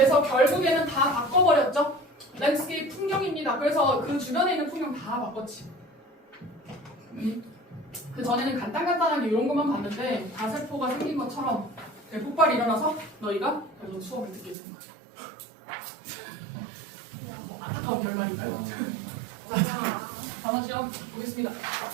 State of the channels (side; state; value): left; drops out; at 14.6 s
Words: 결국에는 다 바꿔버렸죠. 랜드스케이프 풍경입니다. 그래서 그 주변에 있는 풍경 다 바꿨지. 그 전에는 간단하게 이런 것만 봤는데 가세포가 생긴 것처럼 대폭발이 일어나서 너희가 그래서 수업을 듣게 되는 거죠. 뭐 안타까운 결말인가요? 단어 시험 보겠습니다.